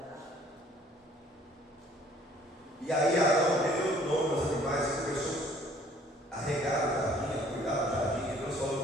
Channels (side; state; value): both; normal; correlation 0.57